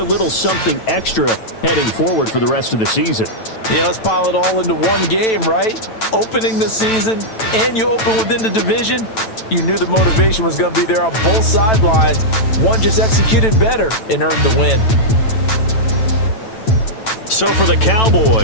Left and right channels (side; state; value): right; late; 9.0 ms